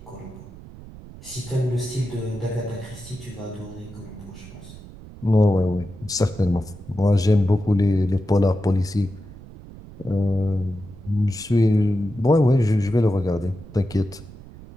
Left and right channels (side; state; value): right; noise; rumble, 17 dB below the sound